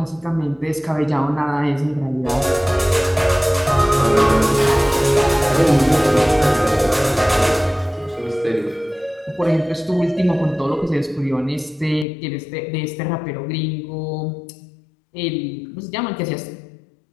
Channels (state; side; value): drops out; right; at 12.1 s